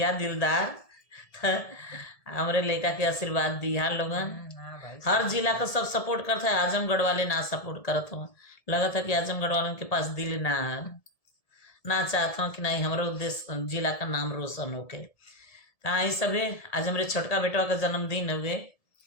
दिलदार तो हमरे लड़का के आशीर्वाद दिया लोगन। हर जिला का सब सपोर्ट करता है, आजमगढ़ वाले ना सपोर्ट करत हो। लगा था कि आजमगढ़ वालों के पास दिल ना चाहता हूँ कि नहीं हमारे उद्देश्य जिला का नाम रोशन होके। तो आई सभी आज हमारे छोटका बेटवा का जन्मदिन हुए,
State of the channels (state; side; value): late; right; 1.7 ms